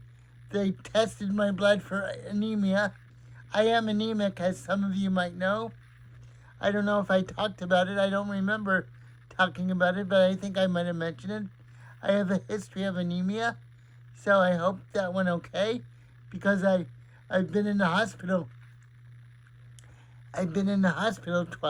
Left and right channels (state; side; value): identical; both; correlation 1.00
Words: They tested my blood for anemia. I am anemic, as some of you might know. I don't know if I talked about it. I don't remember talking about it, but I think I might have mentioned it. I have a history of anemia, so I hope that went okay, because I've been in the hospital. I've been in the hospital